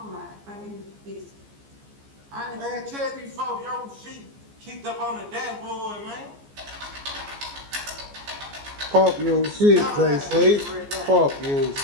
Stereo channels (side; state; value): left; late; 14 ms